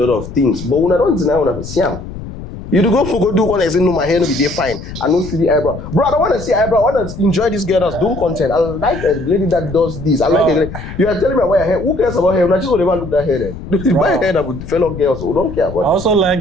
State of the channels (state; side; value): noise; left; rumble, 11 dB below the sound